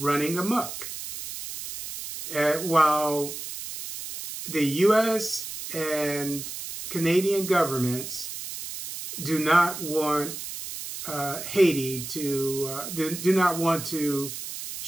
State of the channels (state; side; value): noise; right; hiss, 8 dB below the sound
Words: amok. While the U.S. and Canadian governments do not want Haiti to, do not want to